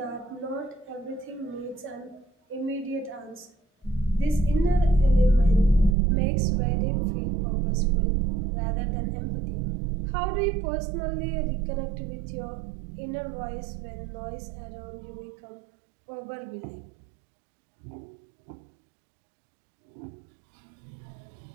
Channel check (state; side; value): drops out; left; at 6.0 s